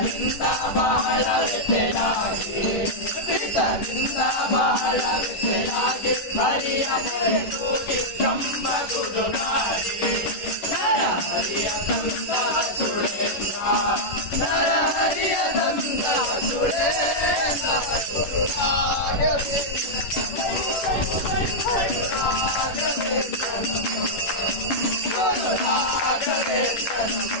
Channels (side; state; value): right; late; 11 ms